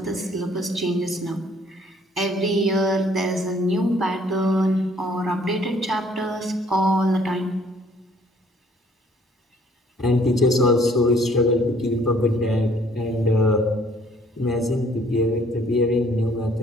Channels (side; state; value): both; normal; correlation 0.60